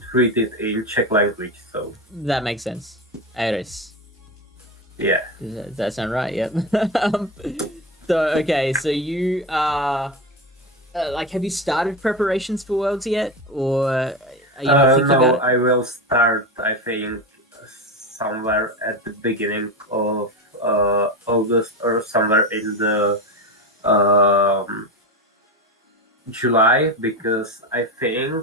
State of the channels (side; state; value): both; normal; correlation 0.20